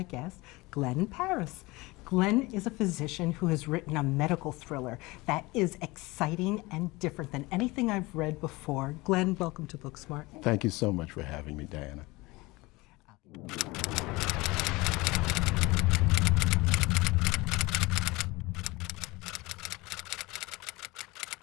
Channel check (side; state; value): right; quieter; 22.4 dB